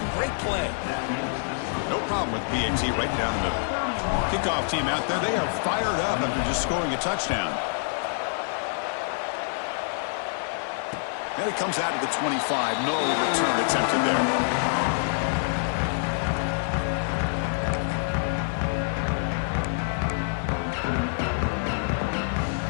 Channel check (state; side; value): silent; right; 61 dB below the other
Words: Great play. No problem with PAT right down the middle. Kickoff team out there, they are fired up after just scoring a touchdown. And it comes out to the 25. No return attempted there.